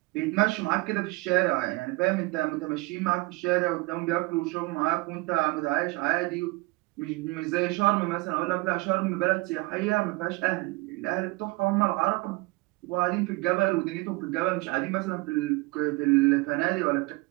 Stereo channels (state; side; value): quieter; left; 23.5 dB